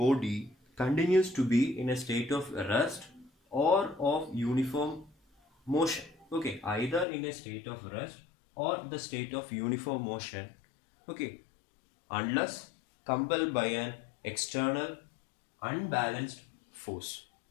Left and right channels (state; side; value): drops out; right; at 7.1 s